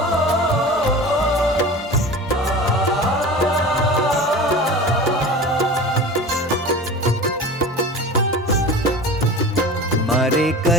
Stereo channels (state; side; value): normal; both; correlation 0.34